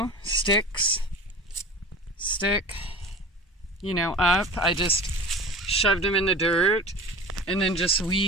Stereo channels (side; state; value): both; normal; correlation 0.35